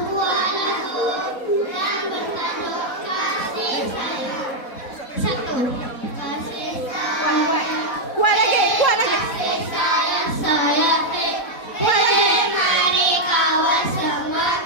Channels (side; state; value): right; late; 4.1 ms